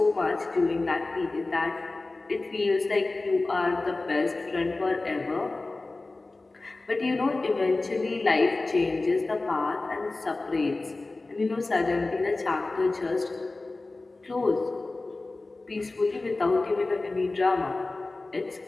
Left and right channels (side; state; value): right; quieter; 3.2 dB